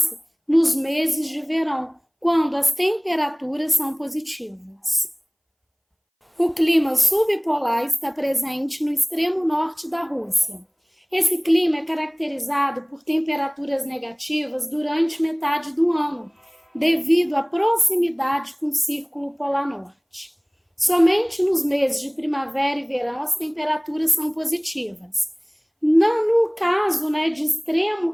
nos meses de verão, quando as temperaturas são positivas. O clima subpolar está presente no extremo norte da Rússia. Esse clima é caracterizado por temperaturas negativas durante metade do ano, devido à proximidade com o Círculo Polar Norte. Somente nos meses de primavera e verão as temperaturas são positivas. No caso de extremo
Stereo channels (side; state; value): both; identical; correlation 1.00